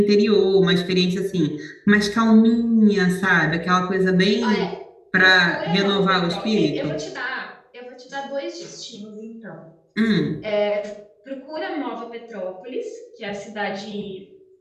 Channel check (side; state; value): both; identical; correlation 1.00